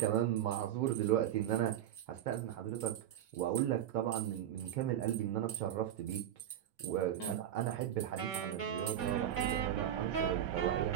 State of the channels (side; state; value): left; quieter; 11.0 dB